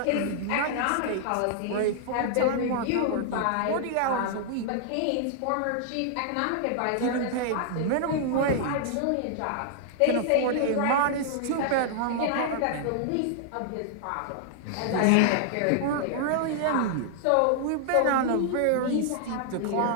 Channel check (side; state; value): both; different; correlation -0.01